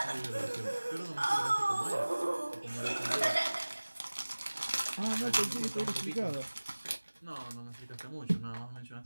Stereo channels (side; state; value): both; inverted; correlation -1.00